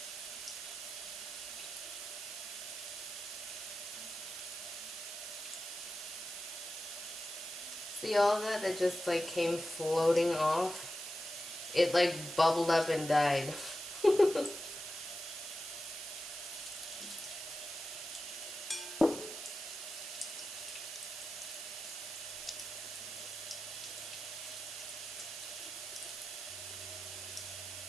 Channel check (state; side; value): noise; right; hiss, 7 dB below the sound